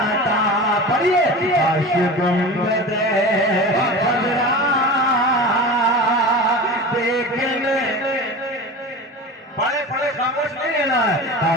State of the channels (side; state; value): both; normal; correlation 0.31